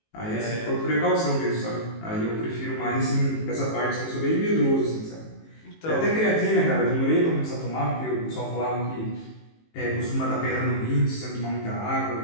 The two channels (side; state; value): right; late; 18 ms